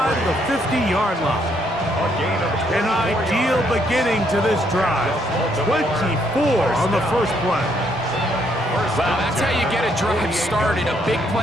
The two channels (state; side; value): normal; both; correlation 0.71